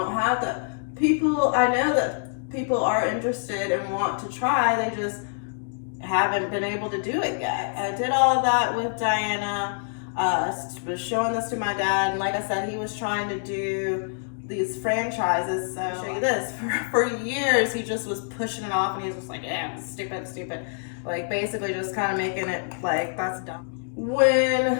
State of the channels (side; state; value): right; silent; digital silence